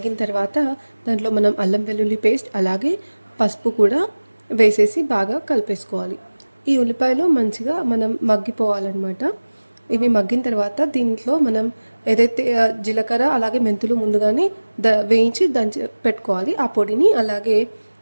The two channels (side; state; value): both; inverted; correlation -1.00